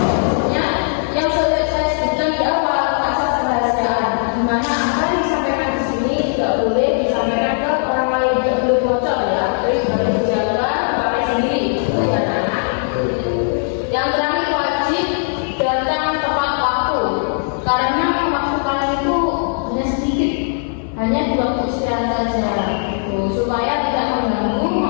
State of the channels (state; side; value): silent; right; 57 dB below the other